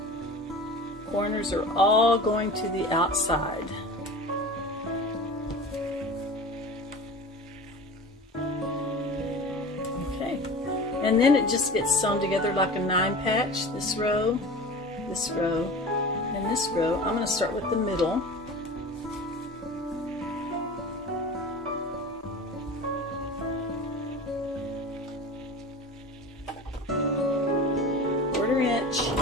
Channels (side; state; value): both; normal; correlation 0.35